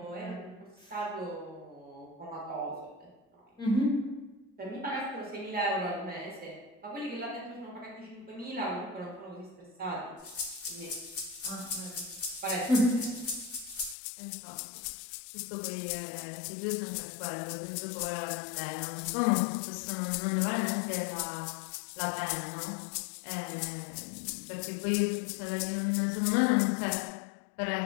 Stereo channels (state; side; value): drops out; right; at 14.0 s